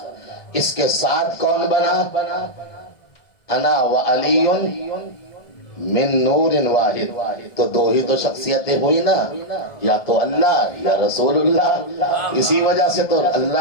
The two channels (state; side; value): late; right; 1.7 ms